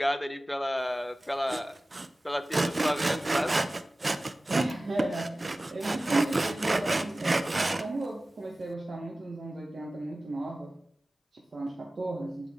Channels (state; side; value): normal; both; correlation 0.97